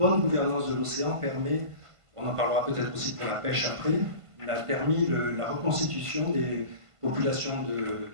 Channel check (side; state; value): left; late; 1.5 ms